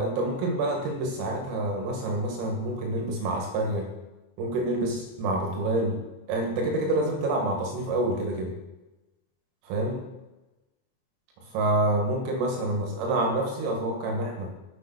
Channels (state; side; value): late; left; 22 ms